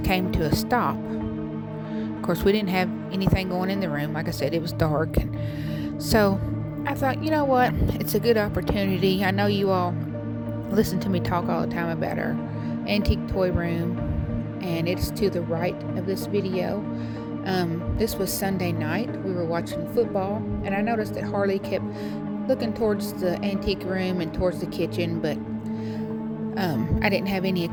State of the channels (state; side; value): identical; both; correlation 1.00